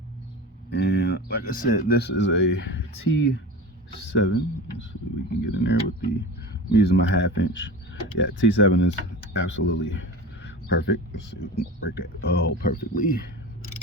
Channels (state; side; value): normal; both; correlation 0.31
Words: And like I said, this is a T7. Let's see if we can get in there with I'm using my 1/2 inch. Yeah, T7 is absolutely perfect. Let's see if we can break that. Oh, perfectly.